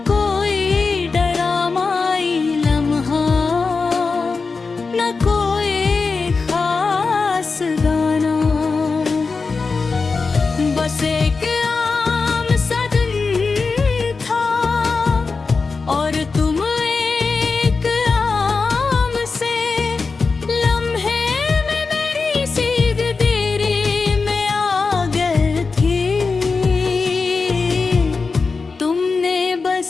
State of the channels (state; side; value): quieter; right; 4.4 dB